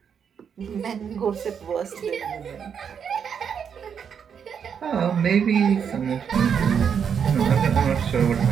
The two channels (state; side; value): quieter; left; 7.4 dB